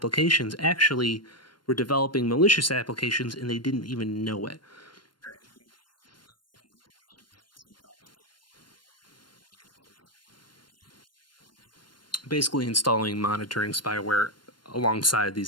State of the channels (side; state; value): right; late; 0.72 ms